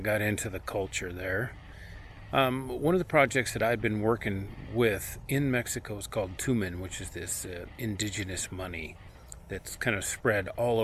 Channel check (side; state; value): both; identical; correlation 1.00